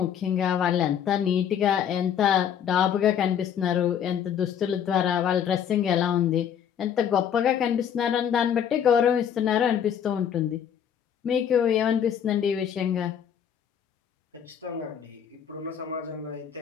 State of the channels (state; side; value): quieter; right; 8.7 dB